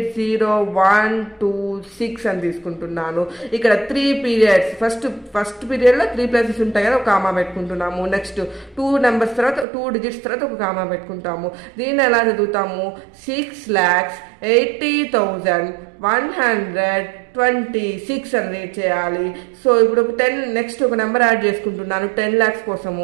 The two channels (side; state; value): left; drops out; at 9.7 s